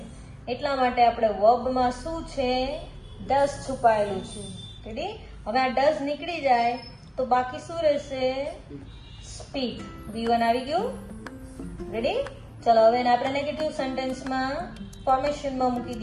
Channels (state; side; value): identical; both; correlation 1.00